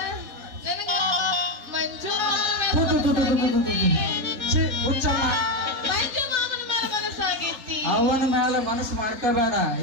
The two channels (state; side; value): late; left; 3.7 ms